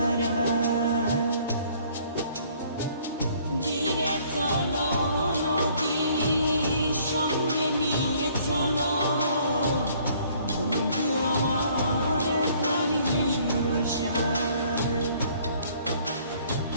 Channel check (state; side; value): inverted; both; correlation -0.59